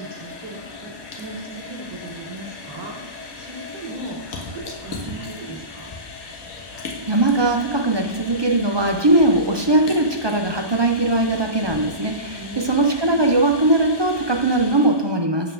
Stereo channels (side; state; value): left; late; 1.2 ms